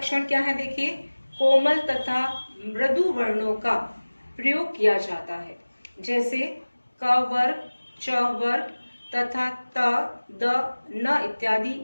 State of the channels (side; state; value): both; inverted; correlation -1.00